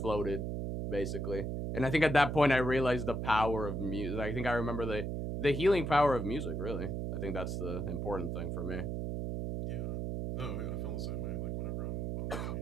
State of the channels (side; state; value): right; noise; hum, 2 dB below the sound